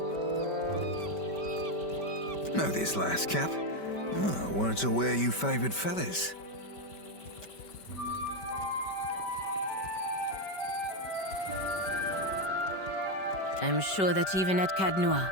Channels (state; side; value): late; right; 5.2 ms